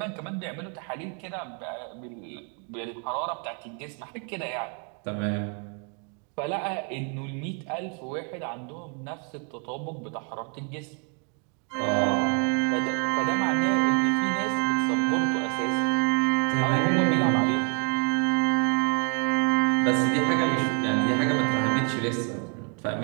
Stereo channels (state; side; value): quieter; left; 39.3 dB